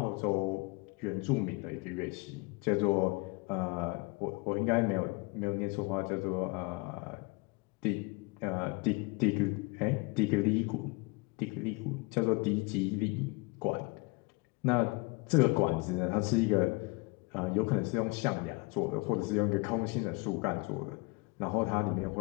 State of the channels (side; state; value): right; quieter; 26.4 dB